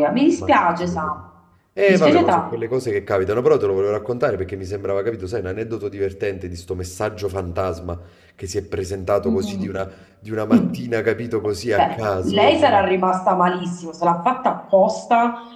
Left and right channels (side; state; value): both; identical; correlation 1.00